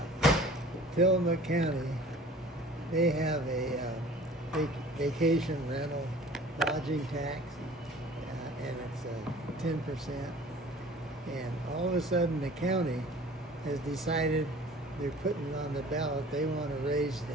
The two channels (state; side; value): normal; both; correlation 0.47